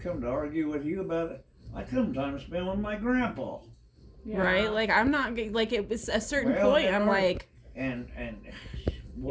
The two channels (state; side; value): identical; both; correlation 1.00